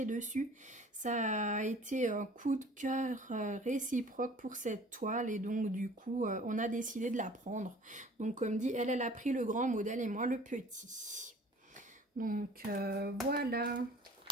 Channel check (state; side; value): normal; both; correlation 0.49